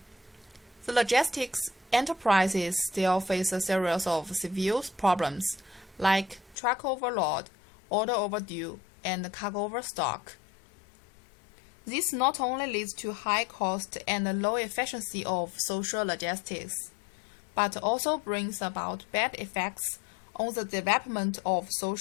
the logistics enterprises still face a series of severe problems like truck overload, order overdue, and cargo overstock. This not only leads to high cost and low efficiency of social logistics, but also brings about bad effects on the development of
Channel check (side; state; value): right; drops out; at 6.6 s